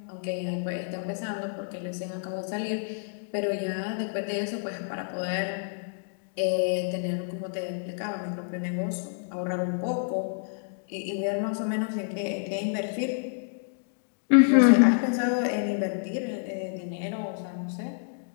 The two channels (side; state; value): right; silent; digital silence